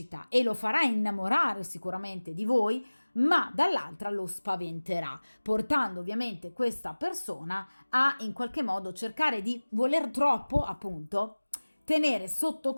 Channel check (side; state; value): both; inverted; correlation -1.00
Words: e lo farà innamorare sicuramente di voi, ma dall'altra lo spaventerà, portando ovviamente questa persona a in qualche modo cercare di voler troppo, appunto, tenere sotto